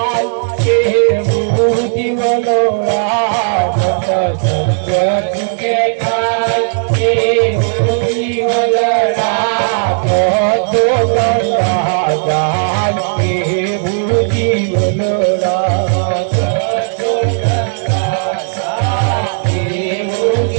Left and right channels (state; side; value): silent; left; digital silence